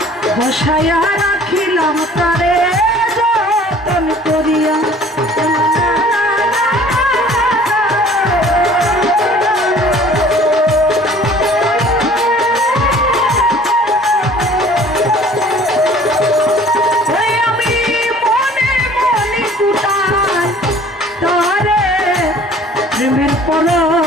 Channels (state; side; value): normal; both; correlation 0.51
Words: বসায়া রাখিলাম তারে যতন করিয়া। আমি মনে মনে কুটাই তারে প্রেমের